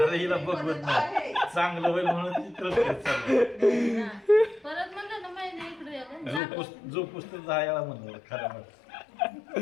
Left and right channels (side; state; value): right; drops out; at 6.4 s